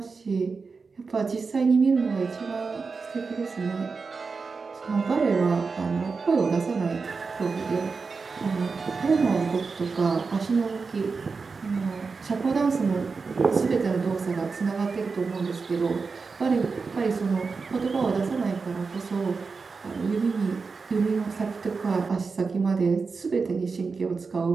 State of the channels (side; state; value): left; quieter; 4.7 dB